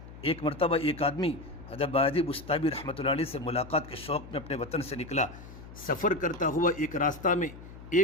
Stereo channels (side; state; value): left; noise; hum, 16 dB below the sound